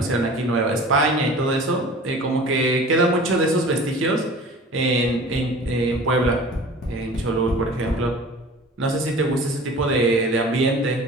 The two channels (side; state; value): both; normal; correlation 0.42